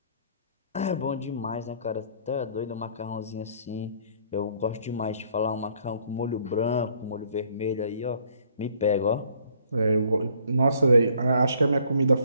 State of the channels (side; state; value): both; inverted; correlation -0.61